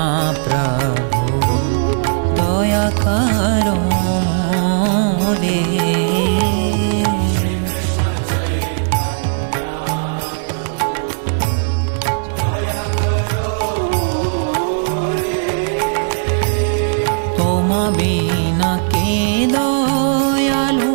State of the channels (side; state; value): left; silent; digital silence